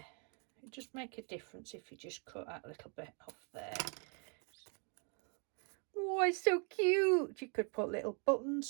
it just make a difference if you just cut that little bit off there. Oh, it's so cute. You could put little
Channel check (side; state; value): left; quieter; 38.5 dB